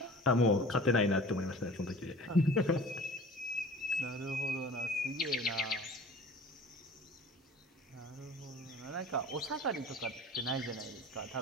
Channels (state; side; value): normal; both; correlation 0.43